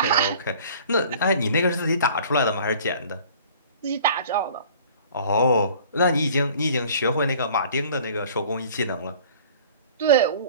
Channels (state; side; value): inverted; both; correlation -0.48